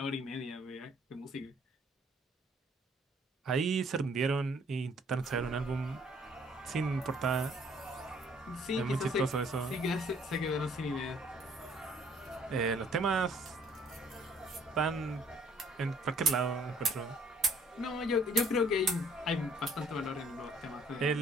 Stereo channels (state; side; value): normal; both; correlation 0.60